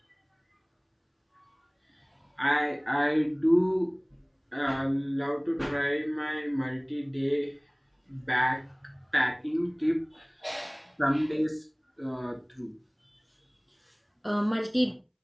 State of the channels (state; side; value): identical; both; correlation 1.00